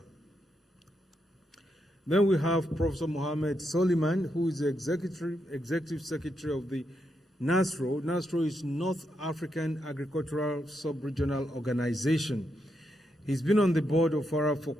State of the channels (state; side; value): normal; both; correlation 0.82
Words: Then we have Professor Mohammed Soliman, who is the Executive Secretary of the NASRO. NASRO is North African Agricultural Sub-Regional Organization. He's been on the board of FARA for